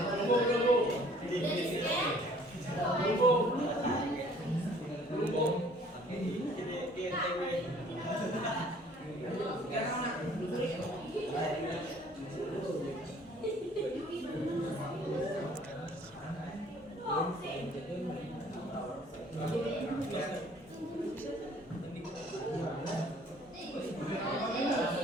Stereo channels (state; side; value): normal; both; correlation 0.56